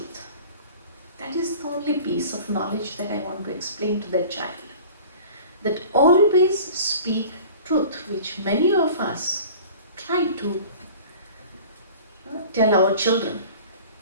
That is the only piece of knowledge that I want to explain to that child. That always speak truth, which many of us try to tell our children.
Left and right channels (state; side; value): inverted; both; correlation -0.43